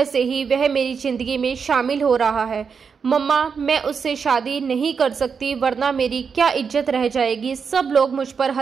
से ही वह मेरी जिंदगी में शामिल हो रहा है। मम्मा, मैं उससे शादी नहीं कर सकती, वरना मेरी क्या इज्जत रह जाएगी। सब लोग मुझ पर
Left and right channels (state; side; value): quieter; left; 6.0 dB